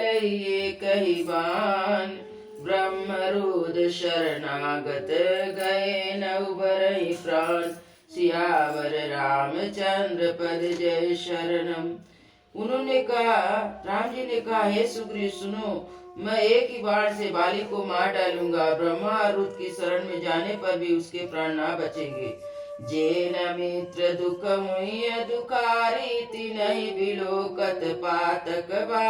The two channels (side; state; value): both; identical; correlation 1.00